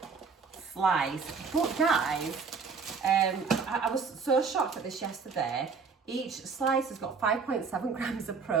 slice. But guys, I was so shocked at this yesterday. Each slice has got 5.7 grams of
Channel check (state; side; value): quieter; left; 5.1 dB